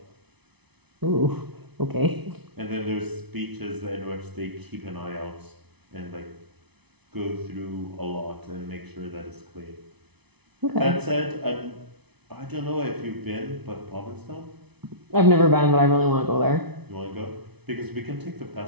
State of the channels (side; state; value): left; late; 0.99 ms